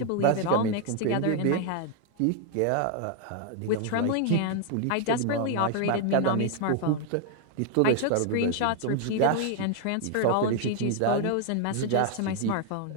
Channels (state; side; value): different; both; correlation 0.00